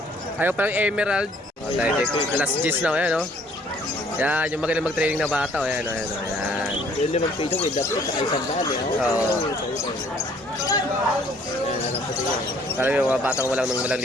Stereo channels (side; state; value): both; normal; correlation 0.60